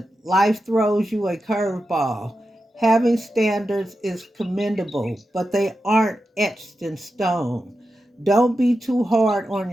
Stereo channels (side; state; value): both; normal; correlation 0.90